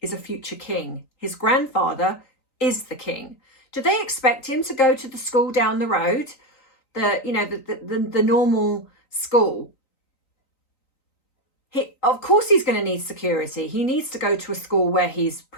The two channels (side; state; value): right; late; 3.9 ms